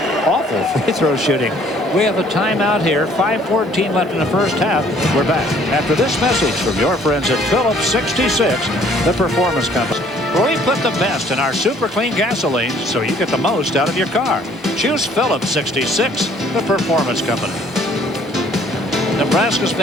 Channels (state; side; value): normal; both; correlation 0.59